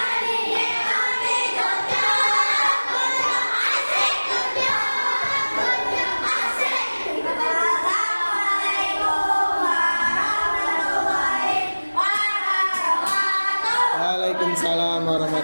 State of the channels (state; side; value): inverted; both; correlation -1.00